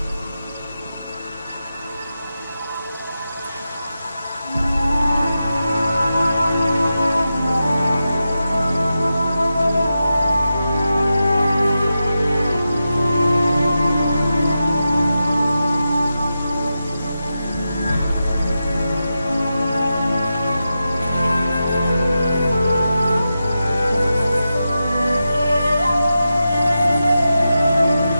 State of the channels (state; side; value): inverted; both; correlation -0.90